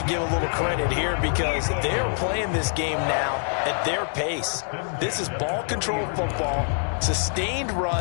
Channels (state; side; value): silent; right; 62 dB below the other